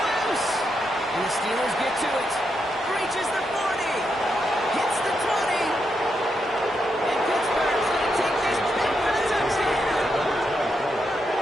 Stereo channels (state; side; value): normal; both; correlation 0.82